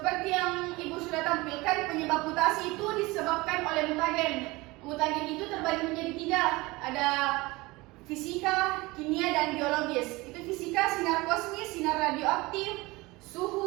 yang Ibu sudah tampilkan, penyebab mutasi itu disebabkan oleh mutagen. Mutagen itu terbagi menjadi 3. Ada fisika, kimia, dan biologis. Itu fisika, sinar kosmis, sinar radioaktif,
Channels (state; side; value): quieter; left; 22.2 dB